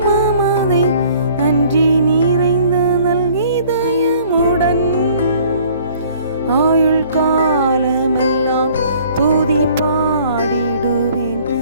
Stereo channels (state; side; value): inverted; both; correlation -0.55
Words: நன்றி நிறைந்த இதயமுடன். ஆயுள் காலமெல்லாம் துதி பாடிடுவேன்